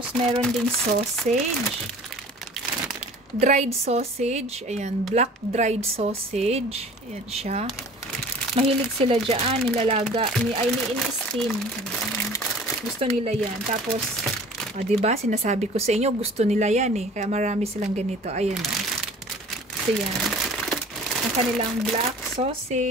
meron ding sausage. Dried sausage. Ayan, black dried sausage. Ayan siya. Mahilig sila dyan. Nilalaga. Ini-steam. Gusto nila yan. Tapos, diba, sinasabi ko sa inyo, gusto nila yan eh. Kaya marami silang ganito. Ayan. So, yan. Ang kanilang black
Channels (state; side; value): normal; both; correlation 0.46